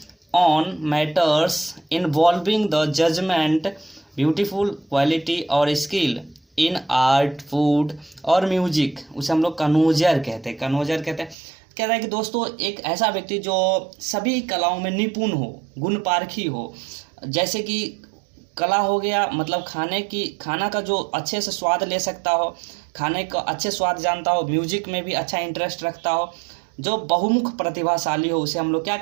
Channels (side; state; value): left; drops out; at 11.4 s